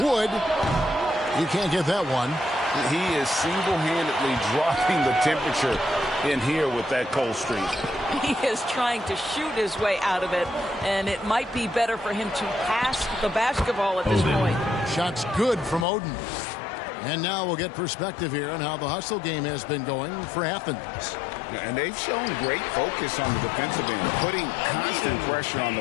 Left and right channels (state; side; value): drops out; right; at 15.9 s